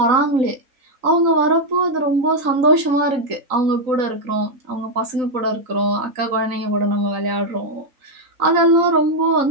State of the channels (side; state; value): left; late; 3.9 ms